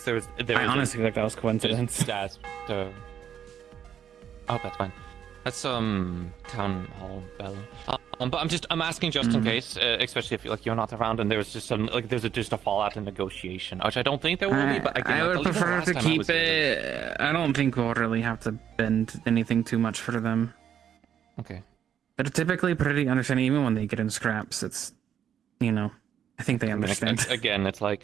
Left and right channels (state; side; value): quieter; left; 9.1 dB